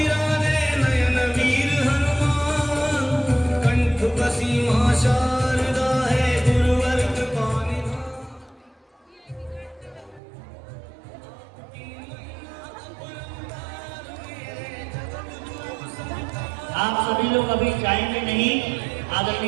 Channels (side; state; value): left; drops out; at 10.2 s